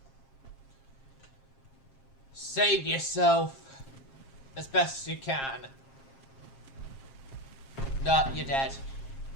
Save yourself as best you can. No, you're dead.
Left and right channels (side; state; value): right; late; 7.5 ms